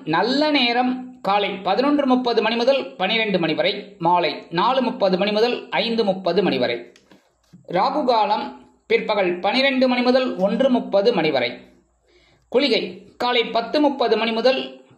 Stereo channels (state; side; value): identical; both; correlation 1.00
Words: நல்ல நேரம் காலை 11:30 மணி முதல் 12 மணி வரை, மாலை 4:30 மணி முதல் 5:30 மணி வரை. ராகு காலம் பிற்பகல் 12 மணி முதல் 1:30 மணி வரை. குளிகை காலை 10:30 மணி முதல்